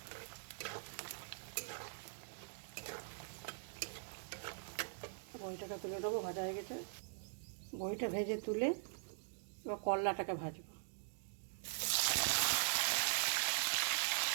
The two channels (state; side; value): silent; left; digital silence